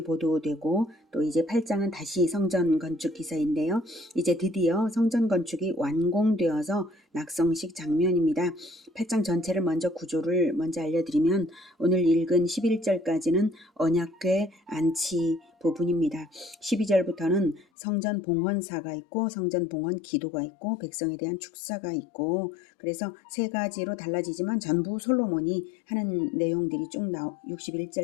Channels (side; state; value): right; drops out; at 17.7 s